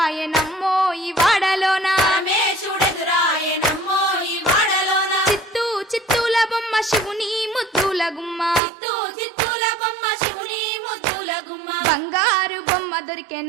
ఈ వాడలోన పరమేశుడెదురాయెనమ్మో ఈ వాడలోన చిత్తూల బొమ్మ శివుని ముద్దుల గుమ్మ చిత్తూల బొమ్మ శివుని ముద్దుల గుమ్మ బంగారు బొమ్మ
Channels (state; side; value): drops out; left; at 8.6 s